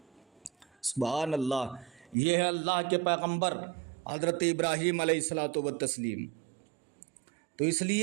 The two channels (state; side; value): drops out; left; at 2.1 s